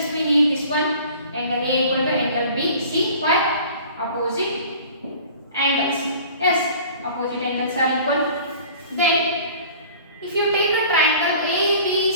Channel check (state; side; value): inverted; both; correlation -0.45